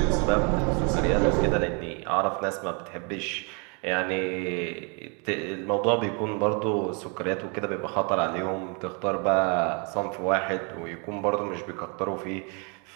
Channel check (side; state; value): left; quieter; 34.9 dB